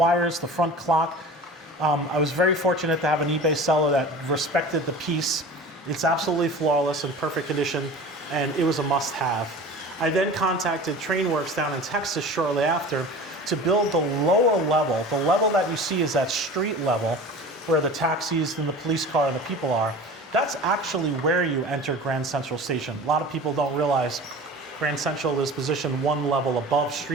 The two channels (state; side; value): normal; both; correlation 0.37